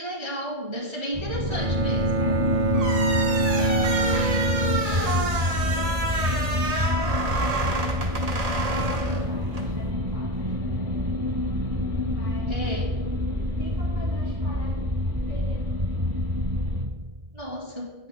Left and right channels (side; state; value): left; late; 1.8 ms